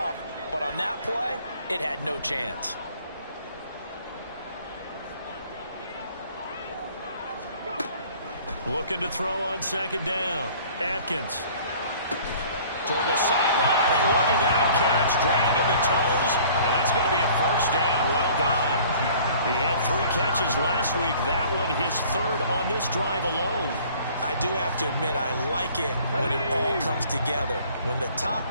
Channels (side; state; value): both; inverted; correlation -0.52